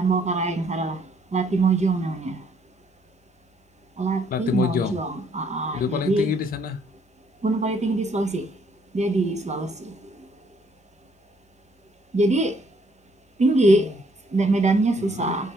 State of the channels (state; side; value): normal; both; correlation 0.66